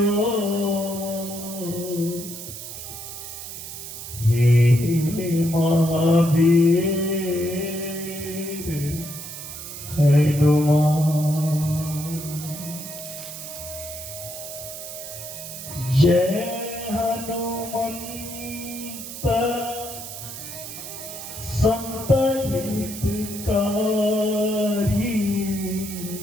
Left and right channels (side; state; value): right; noise; hiss, 10 dB below the sound